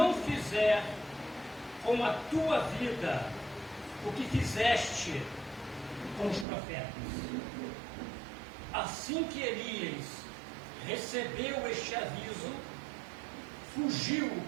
fizer com a tua vida o que fizeste com os profetas. Assim que Elias recebeu este aviso, fugiu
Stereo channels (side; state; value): left; drops out; at 6.5 s